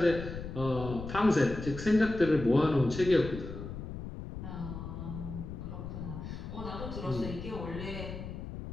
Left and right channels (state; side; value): noise; left; rumble, 8 dB below the sound